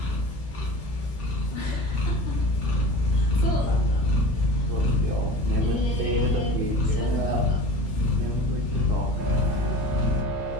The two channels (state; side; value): normal; both; correlation 0.36